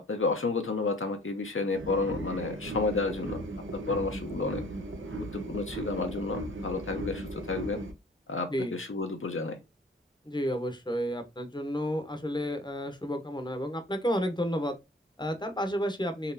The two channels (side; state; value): both; normal; correlation 0.49